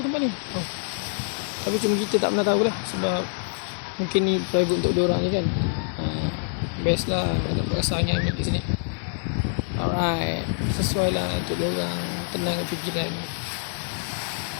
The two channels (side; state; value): right; silent; 55 dB below the other